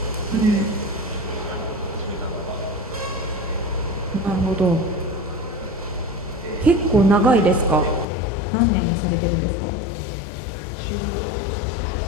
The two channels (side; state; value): right; drops out; at 8.1 s